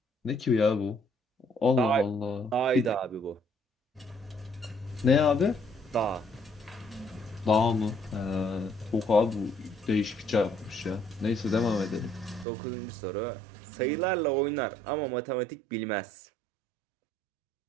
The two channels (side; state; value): left; drops out; at 12.5 s